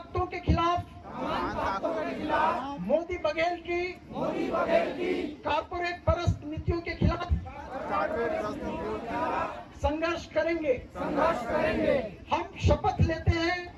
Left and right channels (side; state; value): both; identical; correlation 1.00